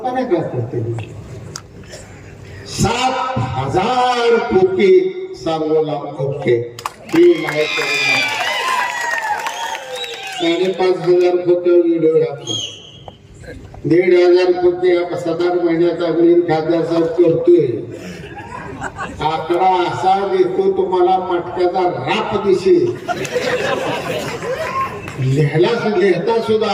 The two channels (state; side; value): identical; both; correlation 1.00